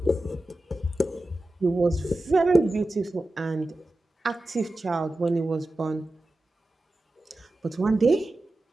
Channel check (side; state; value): both; normal; correlation 0.94